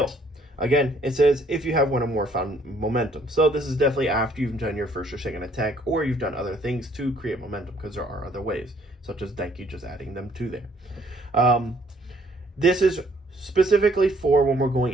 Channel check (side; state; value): both; normal; correlation 0.63